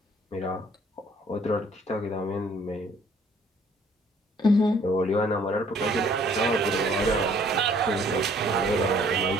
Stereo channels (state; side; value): normal; both; correlation 0.59